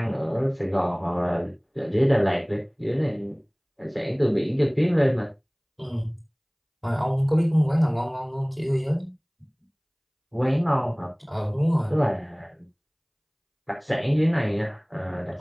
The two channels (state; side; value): identical; both; correlation 1.00